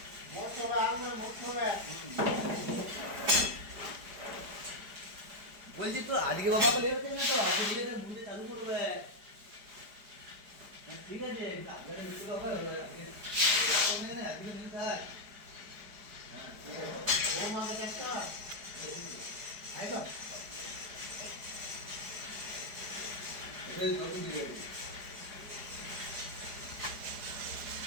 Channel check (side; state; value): left; late; 4.9 ms